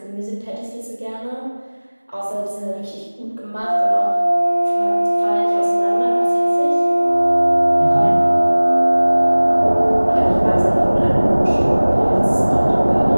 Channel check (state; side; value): inverted; both; correlation -1.00